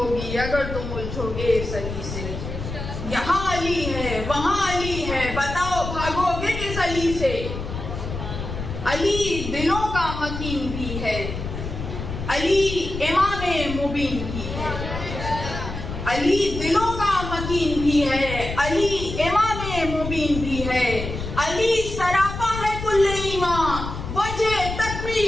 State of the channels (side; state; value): left; noise; rumble, 7 dB below the sound